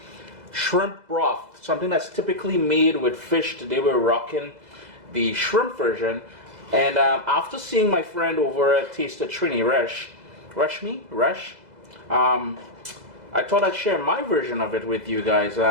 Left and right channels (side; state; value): left; late; 2.0 ms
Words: Shrimp broth, something that's typically made with fish. Today we're rocking the shrimp version. And after seeing my friend over at Taste of Trini, Resh, I thought I'd share my version of it with you guys.